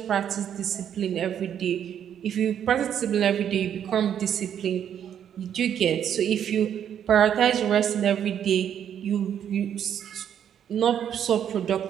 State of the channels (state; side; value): quieter; left; 9.2 dB